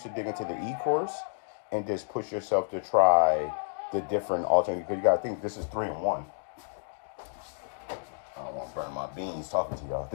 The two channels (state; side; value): silent; right; digital silence